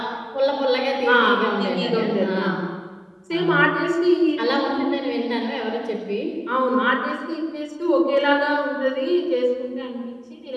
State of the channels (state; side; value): identical; both; correlation 1.00